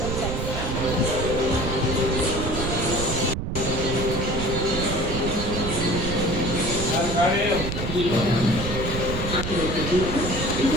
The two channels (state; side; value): noise; right; rumble, 3 dB below the sound